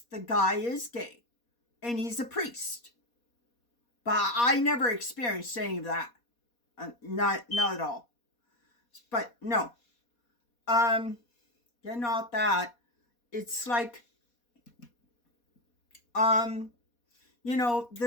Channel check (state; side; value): late; right; 4.2 ms